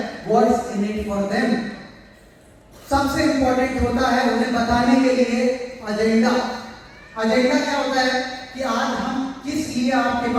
what's in it for them. सबसे इंपॉर्टेंट होता है उन्हें बताने के लिए एजेंडा। एजेंडा क्या होता है कि आज हम किस लिए आपके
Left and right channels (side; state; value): both; identical; correlation 1.00